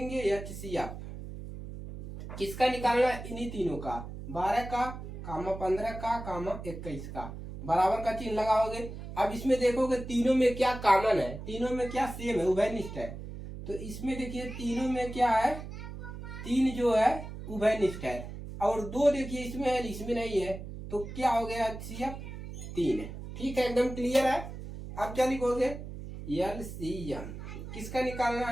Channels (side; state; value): right; noise; hum, 10 dB below the sound